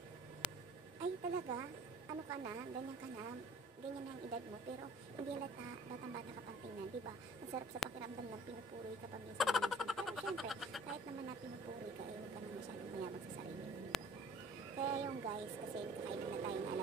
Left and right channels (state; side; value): normal; both; correlation 0.50